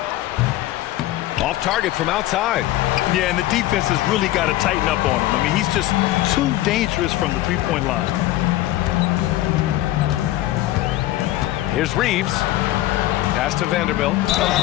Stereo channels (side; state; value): right; quieter; 15.6 dB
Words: Off target from outside. Yeah, and the defense has really got to tighten up on him. I mean, he's just too dangerous from the three-point line. Here's Reeves. Pass to Vanderbilt.